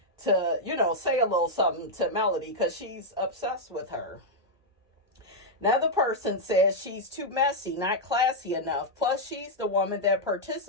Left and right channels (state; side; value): normal; both; correlation -0.03